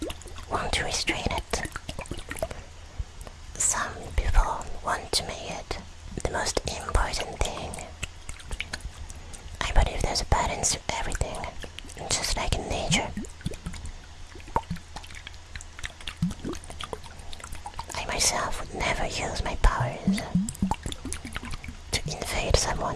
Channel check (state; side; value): identical; both; correlation 1.00